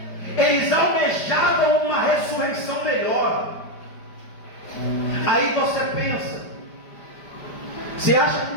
Eles almejavam uma ressurreição melhor. Aí você pensa, você acha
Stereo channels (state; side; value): late; right; 5.0 ms